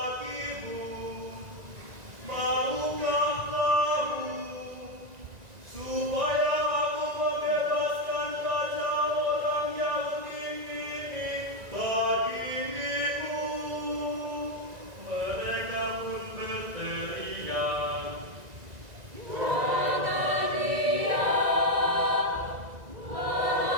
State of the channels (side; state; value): left; late; 1.9 ms